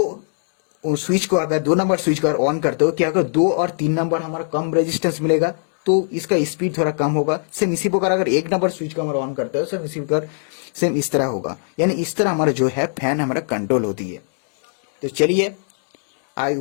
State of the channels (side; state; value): right; silent; digital silence